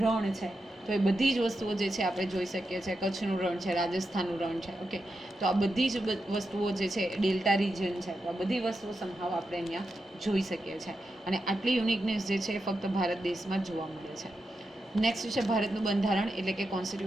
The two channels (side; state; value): both; normal; correlation 0.88